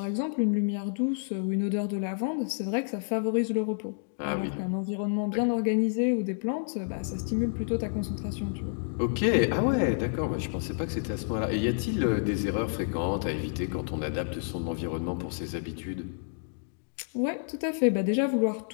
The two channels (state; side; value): silent; right; digital silence